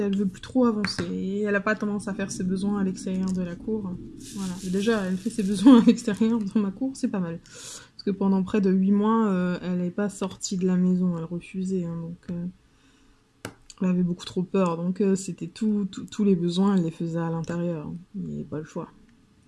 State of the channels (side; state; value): both; identical; correlation 1.00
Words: veut plus trop avancer. Et elle a pas tendance à faire ses besoins à l'extérieur de la cour. Voilà. Déjà, elle fait ses besoins à l'extérieur dans ma cour, c'est pas mal. Parce que pendant près de 8 mois, elle n'est pas sortie de la maison, elle refusait. Hein, donc... Elle avait beaucoup trop peur, donc c'était tous les besoins, elle les faisait à l'intérieur. Il n'y avait pas le choix.